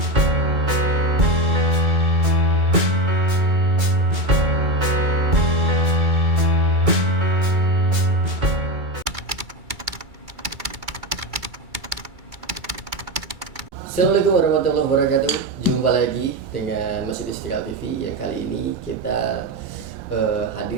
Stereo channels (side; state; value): left; late; 2.3 ms